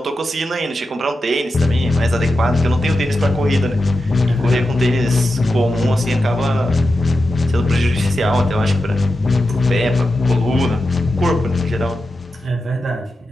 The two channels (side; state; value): both; normal; correlation 0.90